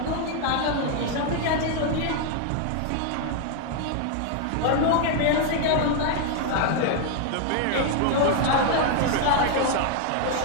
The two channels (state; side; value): different; both; correlation 0.00